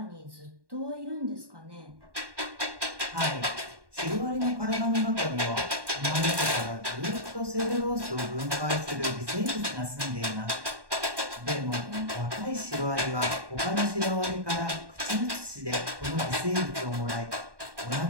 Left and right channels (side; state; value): left; late; 1.2 ms